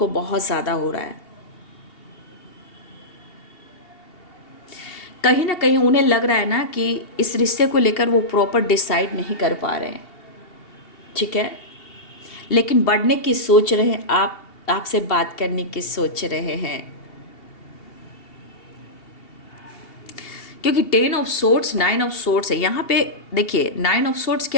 बहुत ज़्यादा हो रहा है। कहीं ना कहीं उन्हें लग रहा है ना कि इस रिश्ते को लेकर वो प्रॉपर डिसाइड नहीं कर पा रहे हैं, ठीक है। लेकिन बढ़ने की सोच रहे हैं, आपसे बात करने की सोच रहे हैं, क्योंकि 10 ऑफ सोर्ड्स 9 ऑफ सोर्ड्स है यहाँ पे। देखिए 9 ऑफ सोर्ड्स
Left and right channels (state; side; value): late; right; 2.7 ms